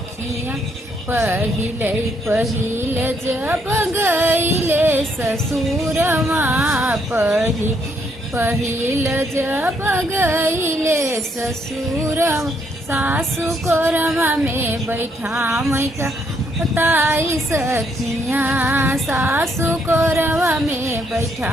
पहिले पहिले जब गईले ससुरमा, पहिल जब गईले ससुरमा, सासु कोरमा में बैठा मैका बताई सखिया, सासु कोरमा में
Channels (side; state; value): both; normal; correlation 0.72